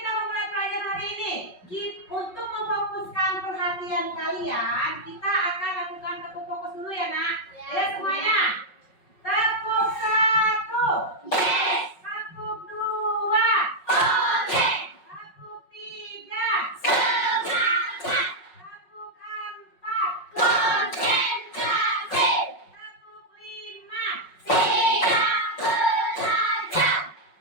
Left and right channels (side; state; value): right; late; 5.4 ms